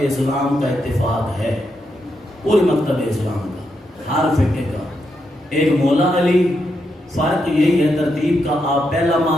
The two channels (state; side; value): normal; both; correlation 0.82